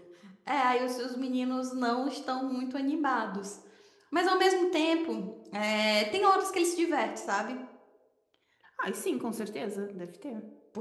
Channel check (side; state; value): both; identical; correlation 1.00